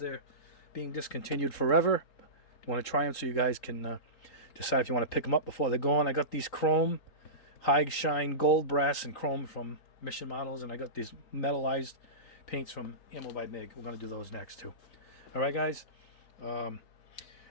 being discontinued forever. You want to try them so you guys can decide if you want to pick them up before they're gone. I got these chrome, high shine gold, brass, and chrome from Mission Models, and I got these metallized paints from Ammo by MIG. We're going to do those next too. All right, guys.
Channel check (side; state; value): right; late; 3.9 ms